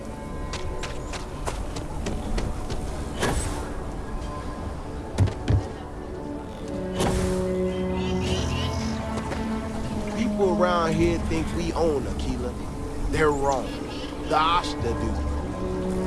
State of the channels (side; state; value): both; identical; correlation 1.00